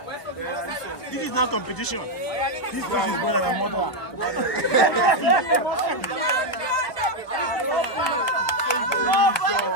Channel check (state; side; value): late; right; 1.5 ms